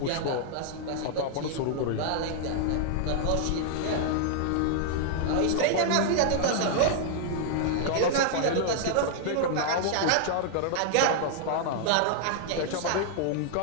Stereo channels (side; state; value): both; different; correlation -0.01